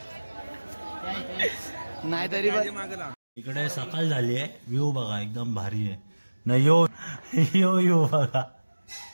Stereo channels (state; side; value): inverted; both; correlation -1.00